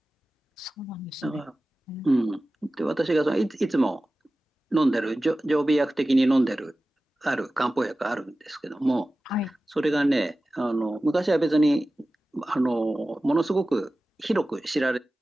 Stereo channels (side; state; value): both; normal; correlation 0.96